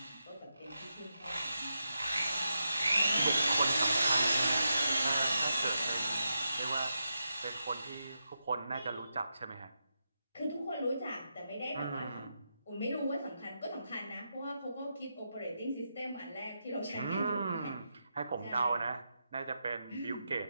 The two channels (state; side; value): inverted; both; correlation -0.86